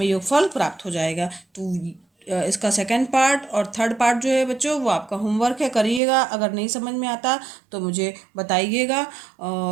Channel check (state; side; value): drops out; left; at 6.0 s